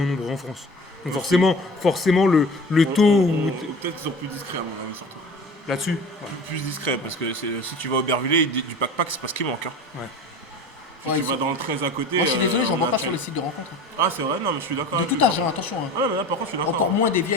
nombreux en France. Donc forcément le taux Peut-être qu'ils sont plus discrets à mon avis, surtout. là-dessus. Plus discrets, parce que si tu vas au Bervillers, du pack-pack, c'est parce qu'il manque. Hein. Si Ouais, tu vas dans le 13 à côté. Moi, je suis désolé, j'en on vois a pas fait- sur les sites de rencontres. Ah, c'est vrai, non, mais je suis d'accord. De avec tout lui. âge, hein, attention. hein. Ouais, mais là, par contre, je suis d'accord. Encore moins des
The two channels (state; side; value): normal; both; correlation 0.37